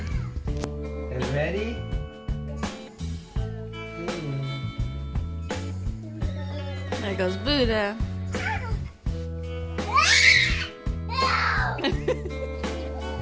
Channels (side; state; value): both; identical; correlation 1.00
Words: You ready? There goes Buddha.